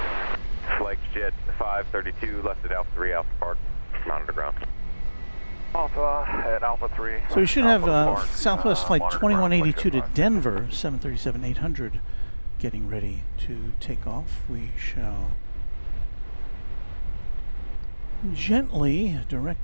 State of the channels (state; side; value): inverted; both; correlation -1.00